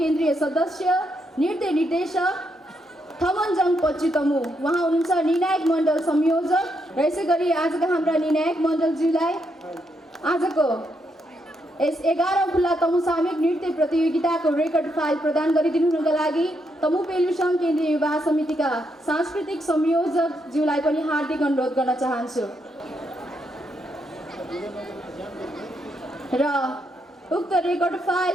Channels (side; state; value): both; normal; correlation 0.79